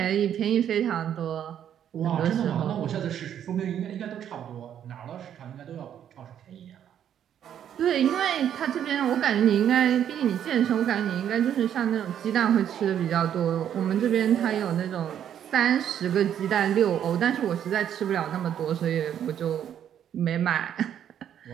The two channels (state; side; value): quieter; left; 9.7 dB